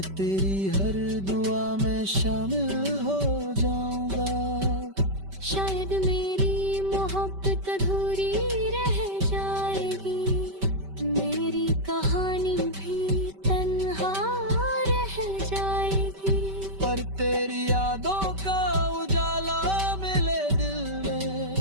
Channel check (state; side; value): late; left; 5.2 ms